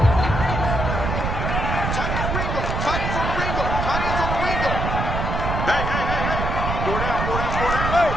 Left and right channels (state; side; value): noise; right; rumble, 2 dB below the sound